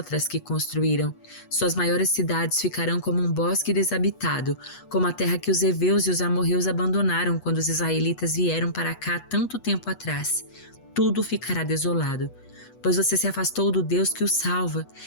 que construíram. Suas maiores cidades ficarão como um bosque desabitado, como a terra que os heveus e os amorreus abandonaram quando os israelitas vieram para cá tanto tempo atrás. Tudo ficará desolado, pois você se afastou do Deus que o salva,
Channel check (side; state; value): right; late; 8.2 ms